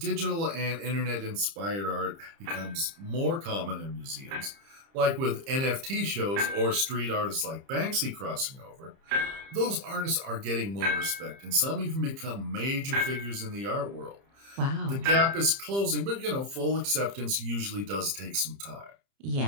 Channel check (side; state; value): left; late; 30 ms